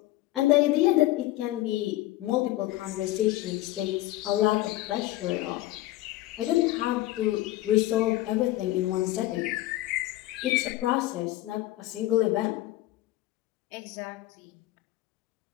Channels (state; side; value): quieter; right; 16.5 dB